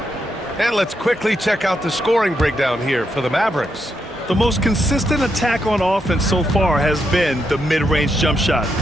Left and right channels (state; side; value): normal; both; correlation 0.81